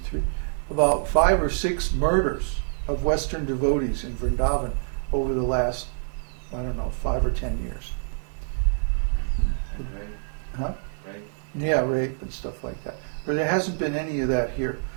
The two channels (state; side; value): silent; left; digital silence